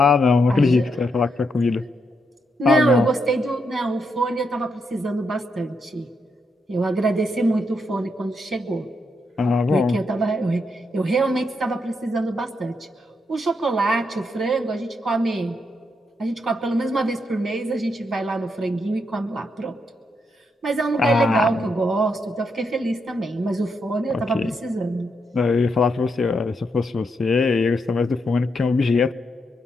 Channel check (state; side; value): normal; both; correlation 0.80